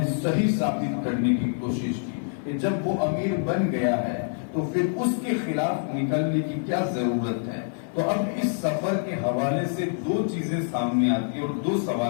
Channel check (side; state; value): right; silent; 61 dB below the other